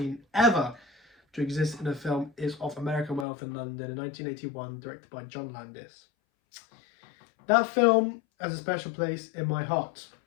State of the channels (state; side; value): drops out; right; at 3.2 s